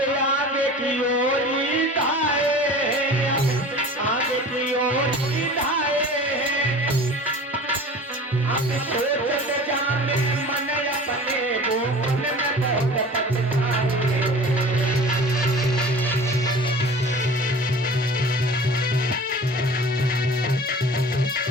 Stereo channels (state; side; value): normal; both; correlation 0.40